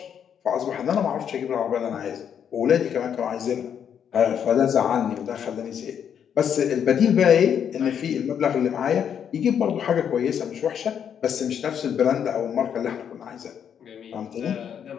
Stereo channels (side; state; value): right; quieter; 8.4 dB